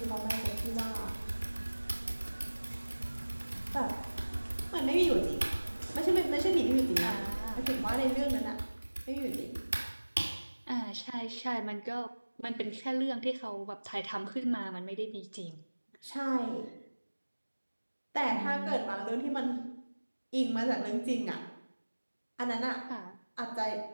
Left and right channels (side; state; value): both; inverted; correlation -1.00